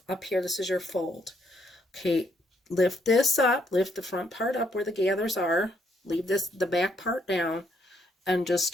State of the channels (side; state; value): both; normal; correlation 0.72